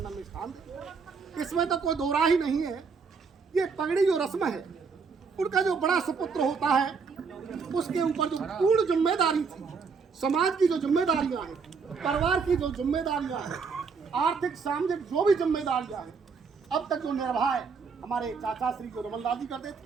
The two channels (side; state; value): left; quieter; 5.3 dB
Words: में स्थान दे, इसमें तो कोई दो राह ही नहीं है। ये पगड़ी जो रस्म है, उनका जो बड़ा सुपुत्र होता है, उसके ऊपर जो पूर्ण जिम्मेदारी थी, समाज की जो जिम्मेदारियां हैं, परिवार की जो जिम्मेदारियां हैं, आर्थिक सामाजिक जो भी जिम्मेदारियां हैं, अब तक जो निर्वाह हमारे चाचा श्री जो रमन लाल जी करते थे,